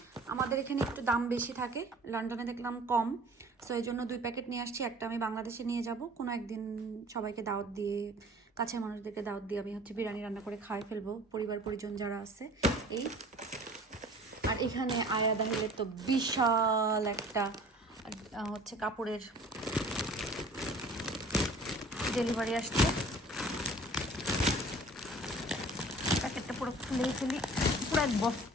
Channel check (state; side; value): normal; both; correlation 0.48